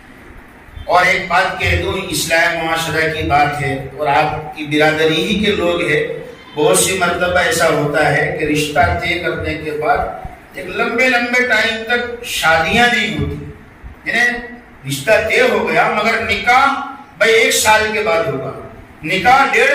اور ایک بات کہہ دوں، اصلاح معاشرہ کی بات ہے اور آپ کی برادری ہی کے لوگ ہیں، بہت سی مرتبہ ایسا ہوتا ہے کہ رشتہ طے کرنے کے بعد ایک لمبے ٹائم تک شادیاں نہیں ہوتی، یعنی رشتہ طے ہو گیا مگر نکاح بھائی 1 سال کے بعد ہوگا، نکاح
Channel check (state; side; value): identical; both; correlation 1.00